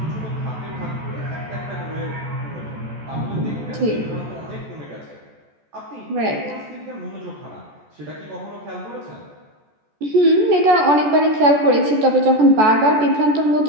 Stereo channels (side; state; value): left; late; 14 ms